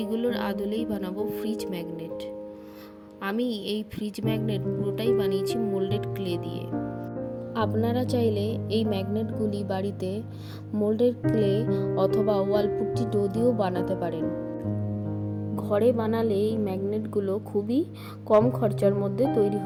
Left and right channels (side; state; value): both; identical; correlation 1.00